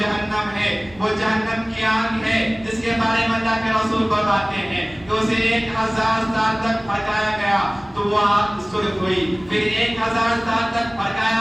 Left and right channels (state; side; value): noise; right; rumble, 24 dB below the sound